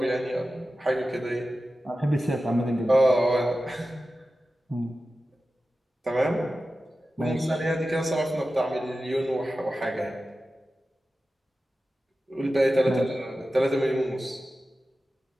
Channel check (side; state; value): both; normal; correlation 0.93